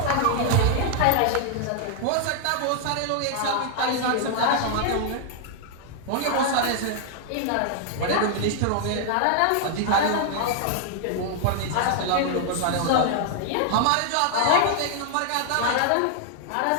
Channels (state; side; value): different; both; correlation 0.00